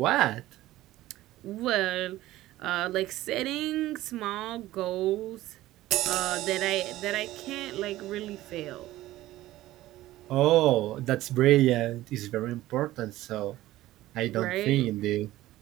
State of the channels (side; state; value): left; quieter; 15.9 dB